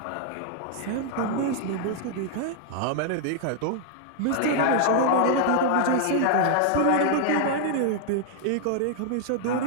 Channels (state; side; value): different; both; correlation 0.00